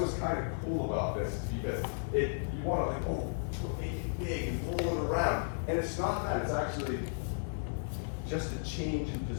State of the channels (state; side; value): silent; right; 55 dB below the other